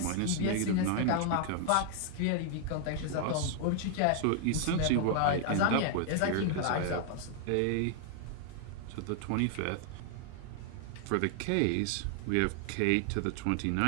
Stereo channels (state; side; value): different; both; correlation 0.00